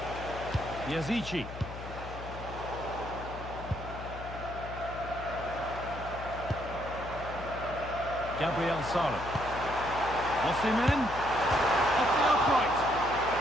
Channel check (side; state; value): left; noise; hum, 11 dB below the sound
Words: Yazici. Gabriel Sara. Osimhen. Off the upright.